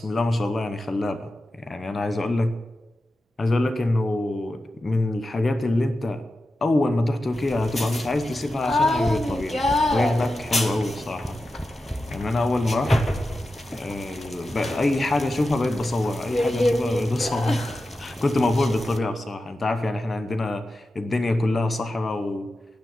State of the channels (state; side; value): normal; both; correlation 0.92